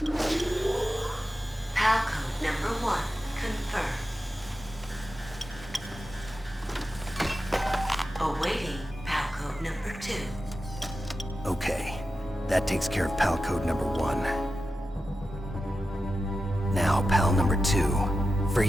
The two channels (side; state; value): both; normal; correlation 0.91